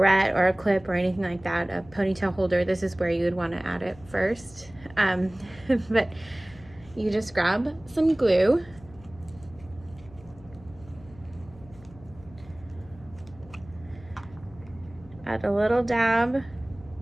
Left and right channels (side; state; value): left; noise; hum, 22 dB below the sound